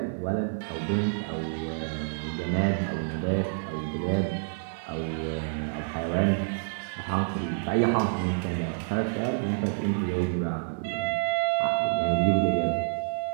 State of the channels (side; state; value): left; silent; 59 dB below the other